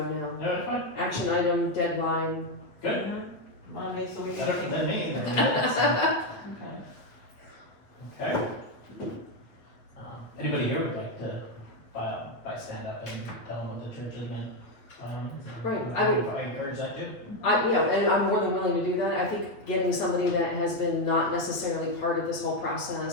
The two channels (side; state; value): right; late; 8.5 ms